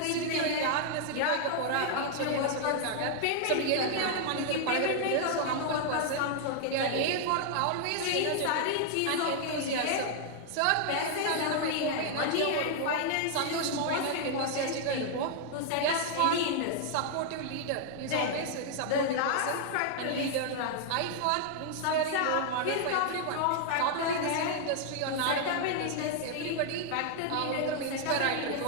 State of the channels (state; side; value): different; both; correlation 0.00